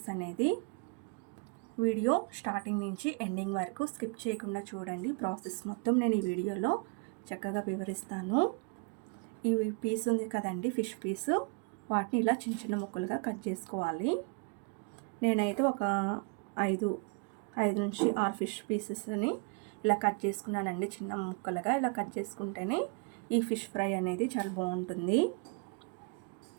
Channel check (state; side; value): quieter; left; 34.0 dB